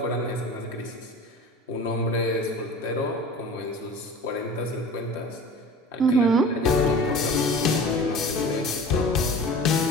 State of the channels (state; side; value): normal; both; correlation 0.38